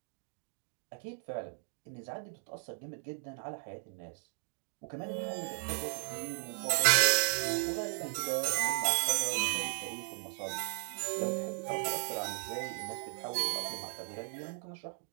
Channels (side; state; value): left; silent; digital silence